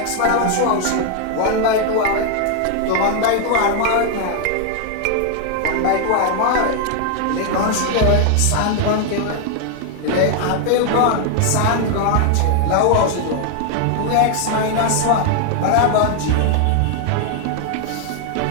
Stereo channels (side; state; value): both; different; correlation 0.00